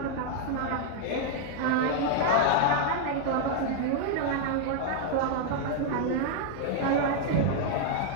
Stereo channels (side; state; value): both; different; correlation 0.00